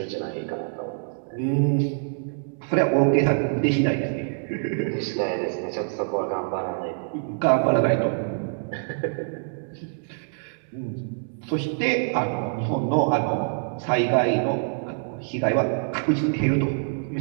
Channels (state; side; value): silent; left; digital silence